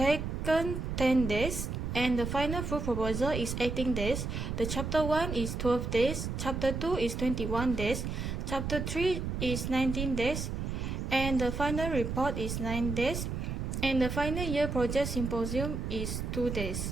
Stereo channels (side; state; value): right; noise; rumble, 3 dB below the sound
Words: 10 days and the final full proposal is 18 days. The chapter 1 is 12 days, chapter 2 is 21 days, chapter 3 is 19 days, and the final report is 9 days, and the final year project symposium is 2